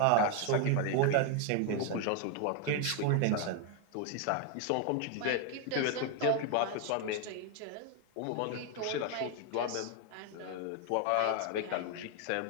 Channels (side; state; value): both; different; correlation 0.01